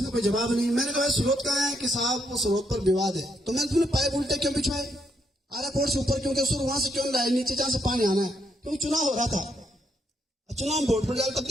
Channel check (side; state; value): both; normal; correlation 0.76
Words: का कोई जवाब नहीं। मैंने कहा स्रोत कहाँ है? कि साहब वो स्रोत पर विवाद है। तो मैंने तुमने पाइप उल्टे क्यों बिछवाए? आरा कोर्ट से ऊपर क्योंकि सुर वहां से क्यों लाए नीचे जहां से पानी आना है? क्योंकि चुनाव हो रहा था, चुनाव में वोट पड़ जाए तब